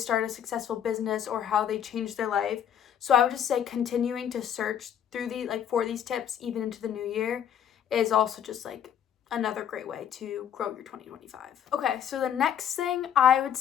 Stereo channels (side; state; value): right; quieter; 9.1 dB